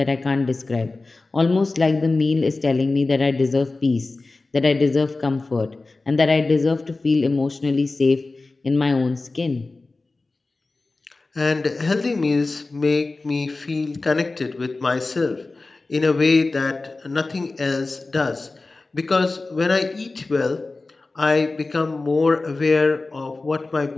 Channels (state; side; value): quieter; right; 3.4 dB